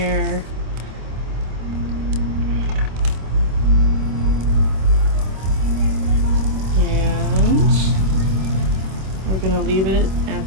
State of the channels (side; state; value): left; late; 26 ms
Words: And we're gonna leave it